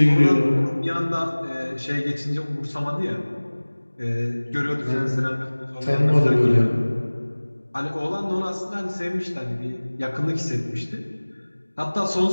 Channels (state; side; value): inverted; both; correlation -1.00